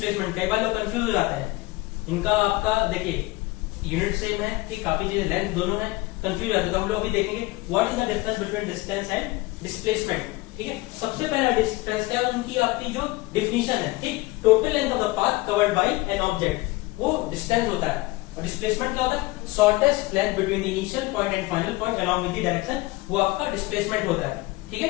कई बार लोग कंफ्यूज हो जाते हैं, इनका आपका देखिए यूनिट सेम है, ठीक, काफी चीजें लेंथ दोनों है, कंफ्यूज जाते हैं। तो हम लोग अभी देखेंगे what is the difference between distance and displacement. ठीक है, सबसे पहला डिफरेंस क्या है, उनकी आपकी जो डिफिनीशन है, ठीक, total length of the path covered bye an object, वो डिस्टेंस होता है। और डिस्प्लेसमेंट क्या होता है, shortest length between initial point and final point along with the direction, वो आपका डिस्प्लेसमेंट होता है। ठीक है,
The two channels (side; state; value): right; quieter; 20.9 dB